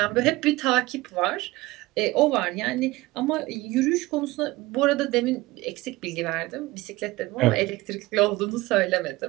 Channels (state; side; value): quieter; left; 20.1 dB